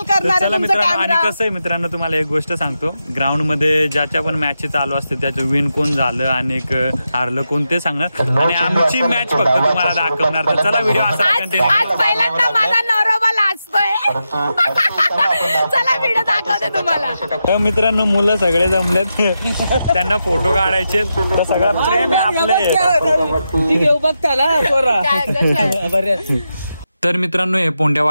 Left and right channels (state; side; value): inverted; both; correlation -0.87